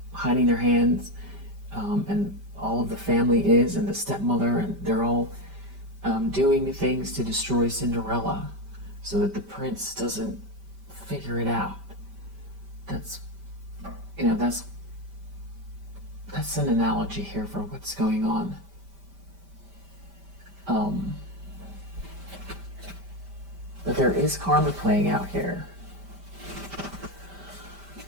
hiding their hands, and all of the family is, and the stepmother, and they're all doing things to destroy Cinderella so that the prince doesn't figure it out. That's an analogy here for what's going on. But there is karma playing out here,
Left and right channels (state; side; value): late; left; 5.1 ms